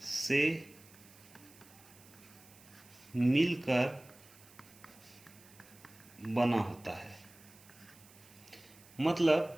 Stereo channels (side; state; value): right; noise; hiss, 23 dB below the sound